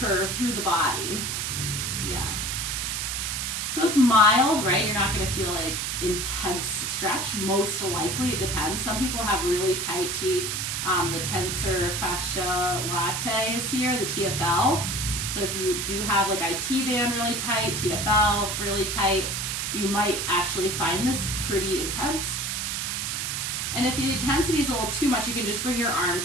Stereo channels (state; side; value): noise; right; hiss, 2 dB below the sound